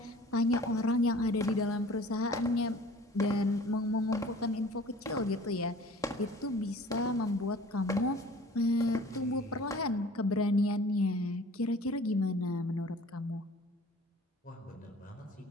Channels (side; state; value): both; normal; correlation 0.47